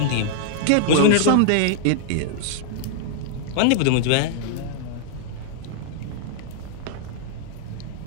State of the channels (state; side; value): different; both; correlation -0.01